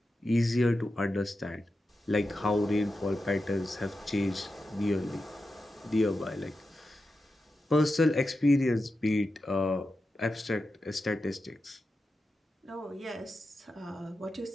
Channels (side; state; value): both; normal; correlation 0.90